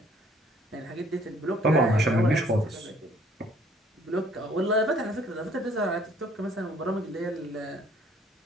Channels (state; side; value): normal; both; correlation 0.60